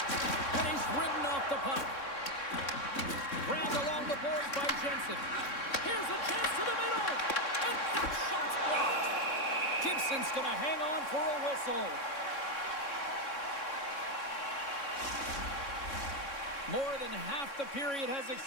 And he's ridden off the puck. Grabbed along the boards by Jensen. Here's a chance to the middle. And that shot's blocked. Gibson's going to hang on for a whistle. More than half the period has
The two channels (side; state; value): right; late; 3.6 ms